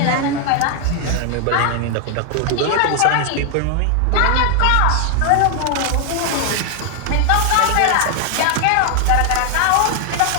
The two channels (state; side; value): different; both; correlation 0.00